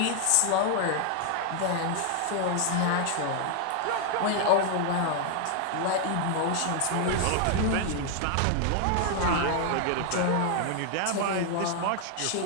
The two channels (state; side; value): different; both; correlation 0.00